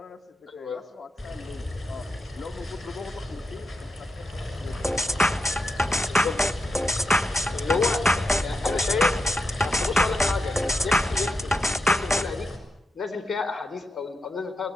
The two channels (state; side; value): normal; both; correlation 0.87